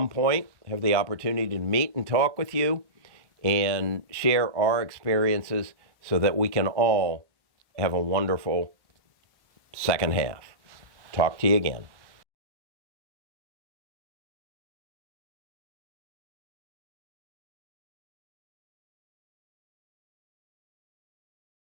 point, have the opportunity to meet and talk with you and share our experiences so that we can all have a wonderful second half. Talk to you again.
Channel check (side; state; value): left; late; 1.1 ms